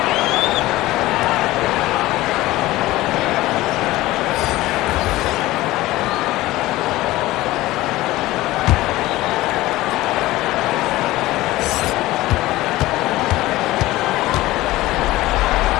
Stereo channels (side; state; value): right; quieter; 17.6 dB